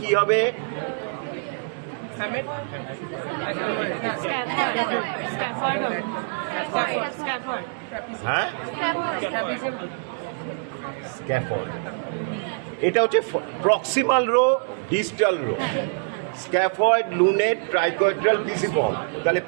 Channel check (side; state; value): left; silent; 60 dB below the other